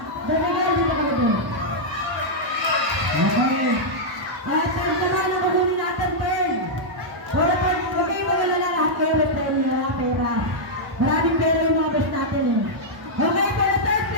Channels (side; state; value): left; late; 1.0 ms